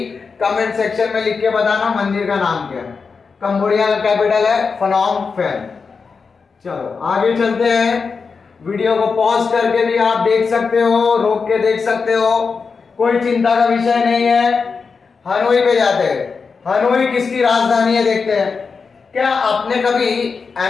कमेंट सेक्शन में लिख के बताना मंदिर का नाम क्या है। कंबोडिया का कैपिटल है फनोम पेन। चलो आगे चलते हैं। वीडियो को पॉज करके भी आप देख सकते हो, रोक के देख सकते हो, कोई चिंता का विषय नहीं है। हनोई पे जाते हैं। हनोई किसकी राजधानी है देखते हैं। क्या आपने कभी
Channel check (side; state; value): right; quieter; 5.1 dB